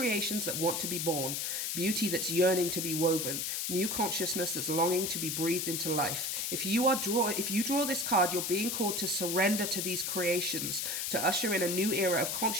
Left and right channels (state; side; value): noise; left; hiss, 1 dB below the sound